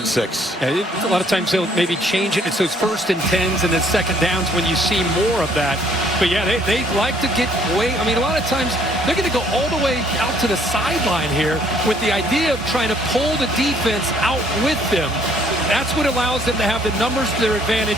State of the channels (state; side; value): normal; both; correlation 0.63